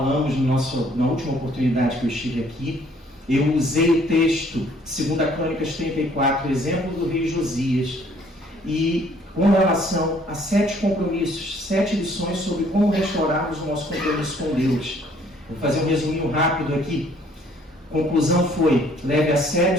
na última oportunidade que eu estive aqui. Eu usei o texto 2 Crônicas 34, exemplo do rei Josias, e com relação a 7 compromissos, 7 lições sobre como restaurarmos o nosso compromisso com Deus. Vou fazer um resuminho rápido aqui. A conclusão foi: leve a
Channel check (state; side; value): normal; both; correlation 0.61